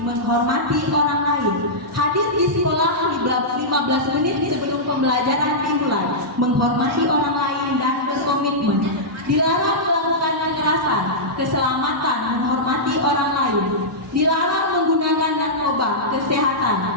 menghormati orang lain. Hadir di sekolah 15 menit sebelum pembelajaran dimulai, menghormati orang lain dan berkomitmen. Dilarang melakukan kekerasan, keselamatan, menghormati orang lain. Dilarang menggunakan narkoba, kesehatan,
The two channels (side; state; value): both; normal; correlation -0.12